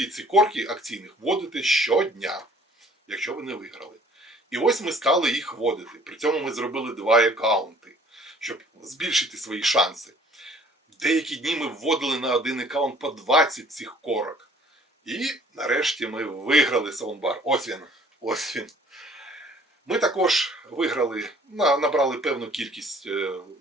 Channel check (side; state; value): both; normal; correlation 0.55